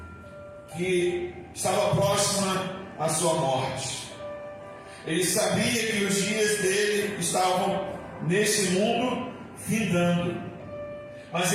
que estava próxima à sua morte. Ele sabia que os dias dele estavam nesse mundo findando, mas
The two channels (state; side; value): identical; both; correlation 1.00